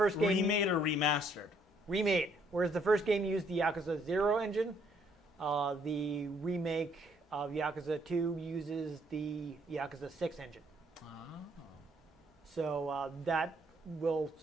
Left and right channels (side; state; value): both; normal; correlation 0.67